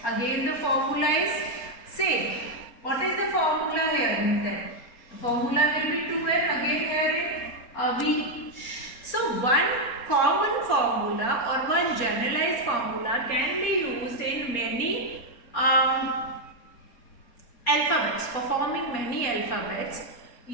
Again the formula is same. What is the formula here then? The formula will be 2n, again here in V. So one common formula or one generalized formula can be used in many alphabets. For forming many alphabets,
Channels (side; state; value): right; late; 4.3 ms